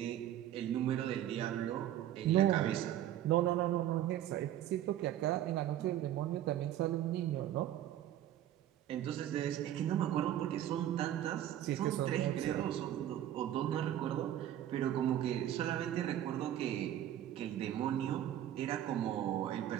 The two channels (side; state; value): left; quieter; 11.9 dB